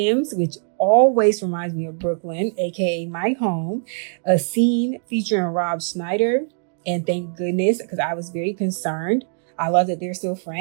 which always reminds me of Brooklyn, aka my home, a scene featuring Rob Schneider, and thank goodness, because I was very concerned. I love that they're still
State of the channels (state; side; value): silent; left; digital silence